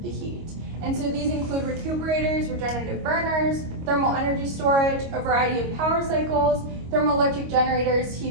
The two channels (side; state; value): left; late; 25 ms